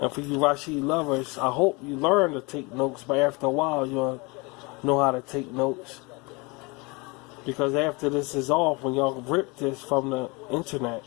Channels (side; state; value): right; quieter; 27.3 dB